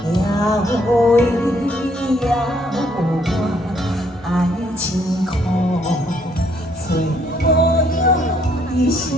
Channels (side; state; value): both; normal; correlation 0.68